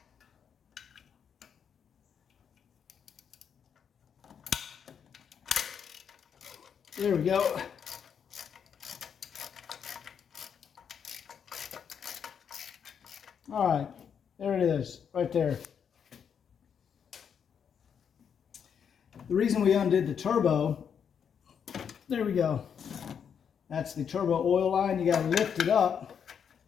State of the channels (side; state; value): right; quieter; 7.5 dB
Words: there we go. All right. There it is, right there. The reason we undid the turbo, there we go. That's the turbo oil line. You got to lift it up